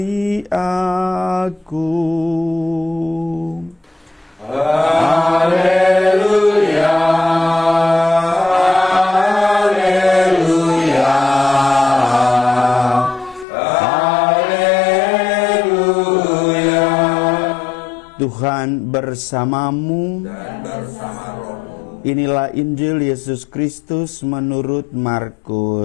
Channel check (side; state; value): right; drops out; at 13.5 s